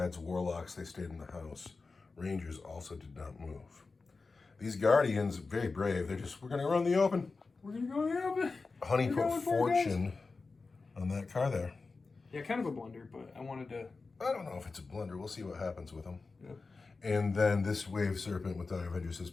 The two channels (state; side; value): quieter; right; 4.1 dB